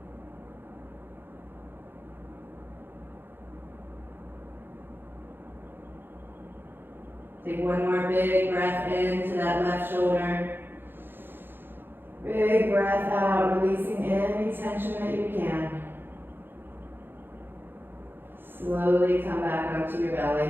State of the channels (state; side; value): late; left; 0.10 ms